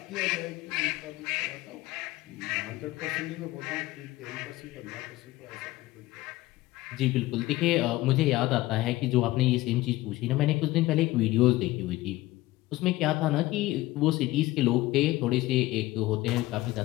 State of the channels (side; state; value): right; quieter; 18.1 dB